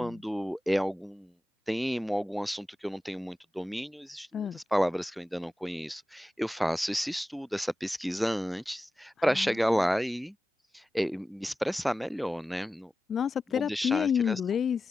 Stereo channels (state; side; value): normal; both; correlation 0.94